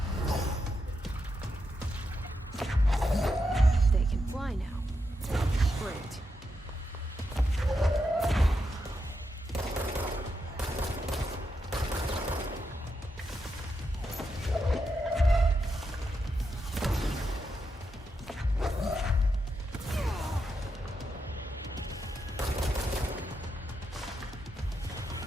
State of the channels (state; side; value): normal; both; correlation 0.85